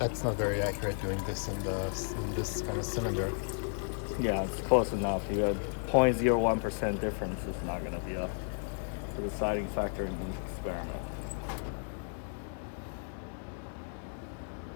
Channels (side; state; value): right; silent; 55 dB below the other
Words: not very accurate doing this in this kind of cylinder. Yeah, it's close enough. You have 0.01% difference. It's not going to be a deciding factor in the experiment.